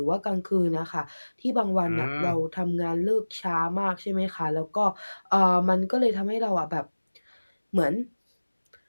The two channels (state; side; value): inverted; both; correlation -1.00